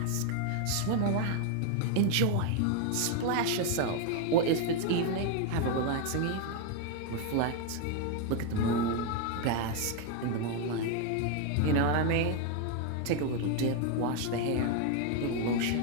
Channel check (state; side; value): different; both; correlation 0.01